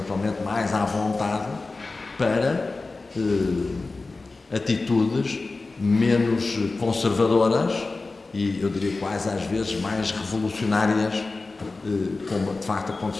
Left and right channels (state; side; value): quieter; right; 3.6 dB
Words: mais à vontade para atitudes menos conservadoras e, eu diria, quase às vezes mais revolucionárias, como de facto